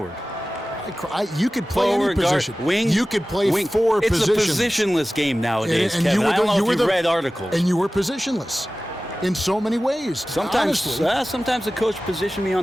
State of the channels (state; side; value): normal; both; correlation 0.96